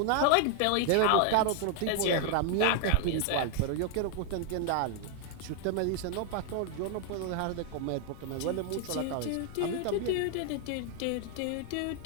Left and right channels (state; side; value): different; both; correlation 0.00